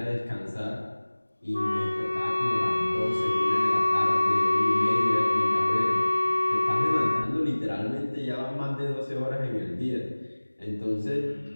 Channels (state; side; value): inverted; both; correlation -1.00